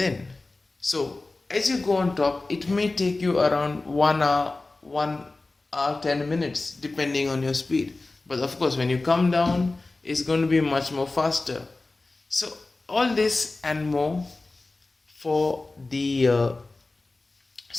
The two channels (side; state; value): right; quieter; 3.3 dB